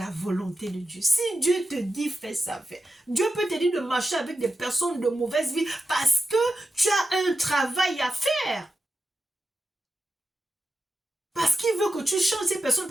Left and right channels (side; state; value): both; normal; correlation 0.90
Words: volonté de Dieu. Si Dieu te dit fais ça, fais. Dieu peut te dire de marcher avec des personnes de mauvaise vie parce que tu as un travail à faire. Parce qu'il veut que tu changes ces personnes,